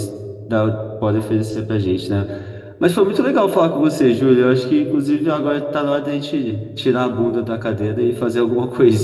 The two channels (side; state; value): both; identical; correlation 1.00